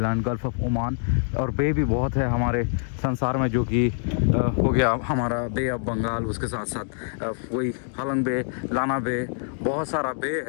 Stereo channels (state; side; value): silent; right; digital silence